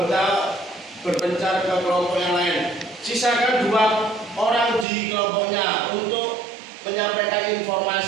berpencar ke kelompok yang lain. Sisakan 2 orang di kelompoknya untuk menyampaikan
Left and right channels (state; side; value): drops out; left; at 4.9 s